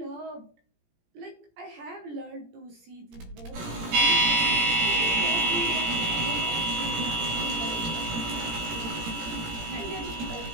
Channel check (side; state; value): left; late; 17 ms